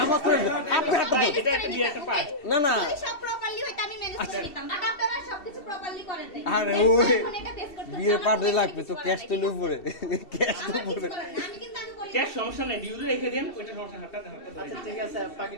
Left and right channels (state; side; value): late; right; 2.7 ms